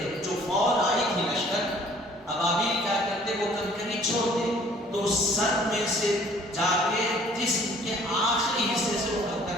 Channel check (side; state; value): both; normal; correlation 0.55